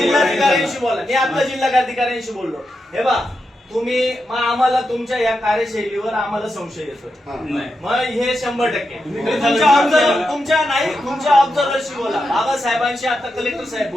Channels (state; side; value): normal; both; correlation 0.87